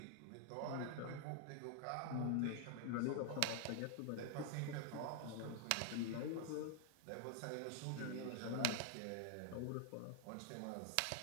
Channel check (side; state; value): both; different; correlation 0.00